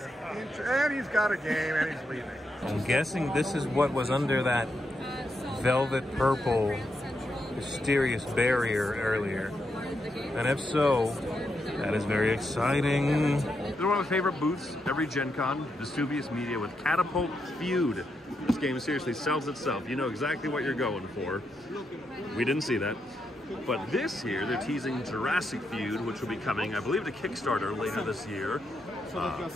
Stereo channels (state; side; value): normal; both; correlation 0.83